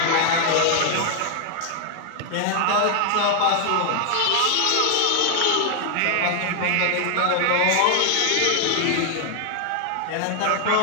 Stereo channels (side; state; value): both; different; correlation 0.00